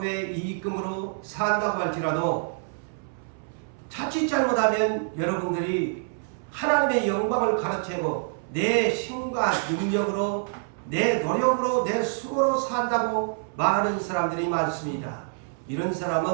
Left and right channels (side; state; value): left; silent; 61 dB below the other